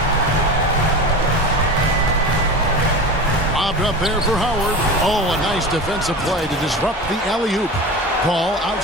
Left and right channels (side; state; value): both; normal; correlation 0.29